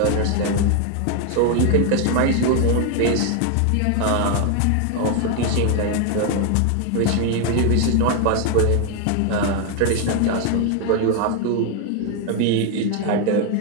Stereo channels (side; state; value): both; different; correlation 0.01